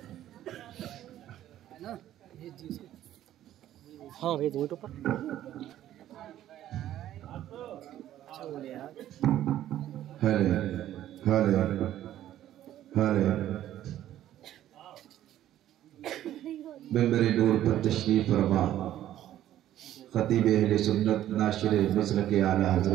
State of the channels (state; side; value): quieter; left; 12.5 dB